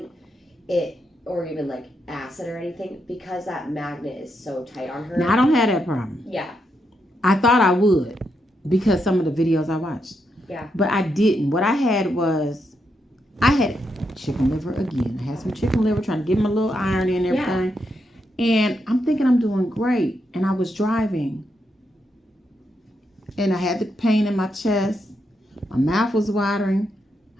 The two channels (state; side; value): normal; both; correlation 0.82